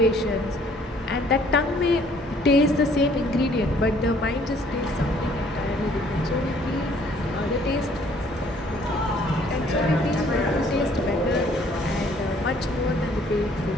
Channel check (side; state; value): both; normal; correlation 0.60